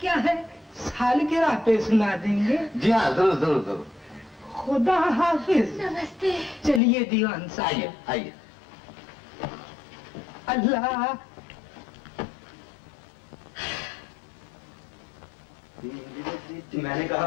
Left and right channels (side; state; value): right; drops out; at 6.8 s